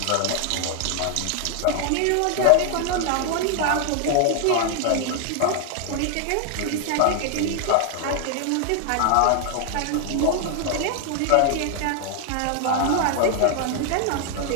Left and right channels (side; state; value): both; different; correlation 0.00